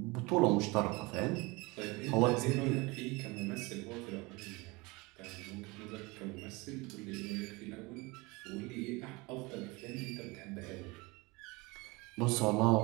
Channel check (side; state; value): left; quieter; 24.7 dB